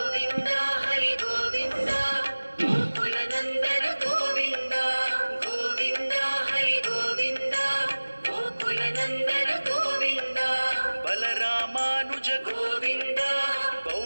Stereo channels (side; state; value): both; inverted; correlation -1.00